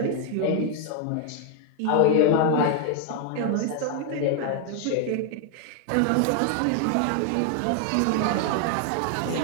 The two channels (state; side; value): different; both; correlation 0.00